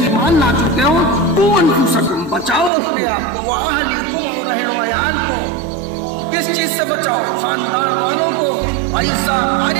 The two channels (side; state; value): left; drops out; at 2.7 s